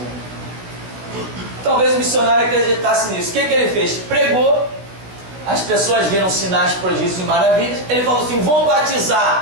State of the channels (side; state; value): left; late; 16 ms